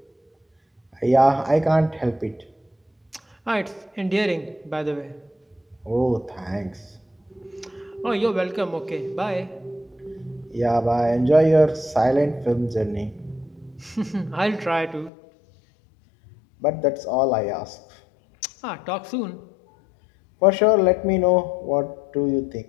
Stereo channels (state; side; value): drops out; right; at 15.1 s